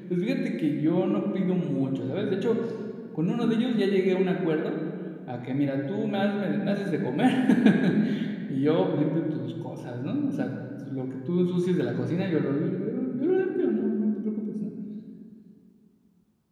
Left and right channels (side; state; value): both; identical; correlation 1.00